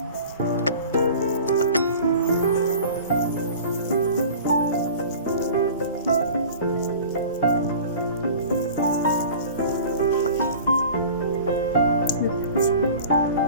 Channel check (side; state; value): both; inverted; correlation -0.41